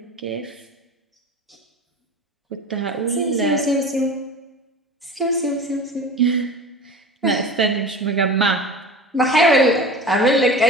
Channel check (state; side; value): normal; both; correlation 0.35